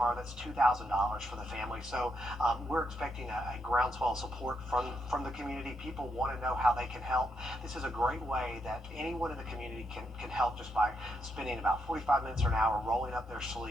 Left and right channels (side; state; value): both; normal; correlation 0.80